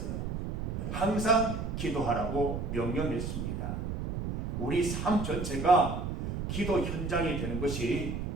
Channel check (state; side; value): noise; right; rumble, 3 dB below the sound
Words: 항상 기도하라고 명령했습니다. 우리 삶 전체가 기도 현장이 되는 것이